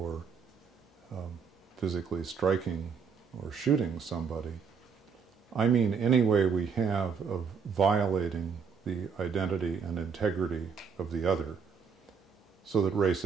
physically striking or shooting somebody. I mean any way we have of violating the identity and integrity of the other, so that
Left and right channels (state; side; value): quieter; left; 6.1 dB